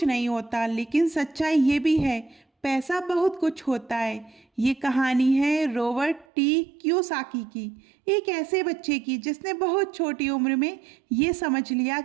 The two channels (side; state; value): left; drops out; at 6.2 s